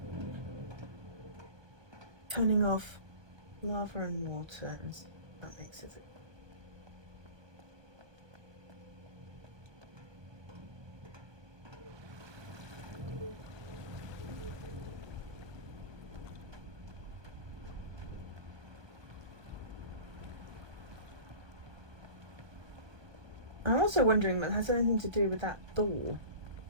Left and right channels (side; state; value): left; late; 1.2 ms